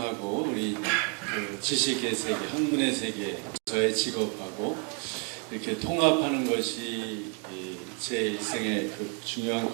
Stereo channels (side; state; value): left; quieter; 37.3 dB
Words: 우리 지식의 세계, 학문의 세계, 저의 직업하고 이렇게 통합하는 것이 제 일생의 중요한